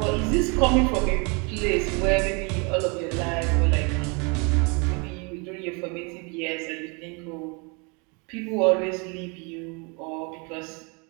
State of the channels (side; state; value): left; quieter; 31.8 dB